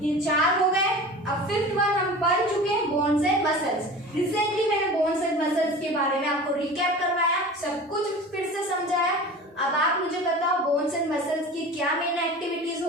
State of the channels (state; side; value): normal; both; correlation 0.36